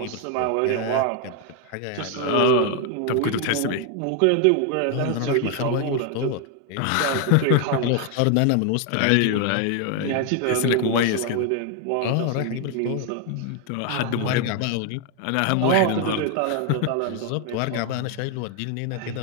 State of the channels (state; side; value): different; both; correlation 0.01